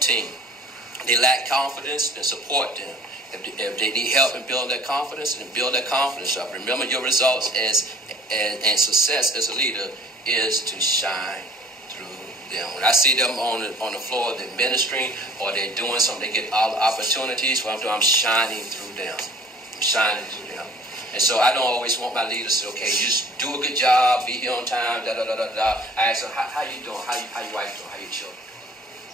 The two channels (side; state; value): both; normal; correlation 0.50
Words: team. They lack confidence, then support them. If they need help in building their confidence, then build their confidence up. Remember your results and success as a leader is to shine through them. When I see them on the floor, they're ministering or they're doing something, they get all the opportunities. What I'm doing, I'm shining through them. I'm shining through them. And so I don't always want my leaders to say, okay, just do a good job, be here on time, da-da-da-da-da. I ask them, how you doing? How your wife doing? How your children?